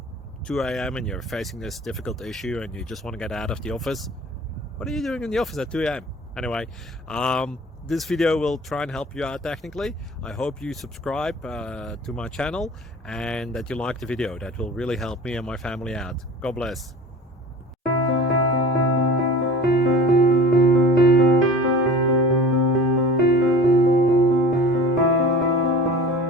2 a.m. and you're facing this difficult issue and you just want to get out of the office. What are you doing in the office at 2 a.m.? Anyway, this video will try and help you out technically. I hope you subscribe to my channel and that you like the video. That will really help me and my family out. God bless.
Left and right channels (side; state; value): both; normal; correlation 0.41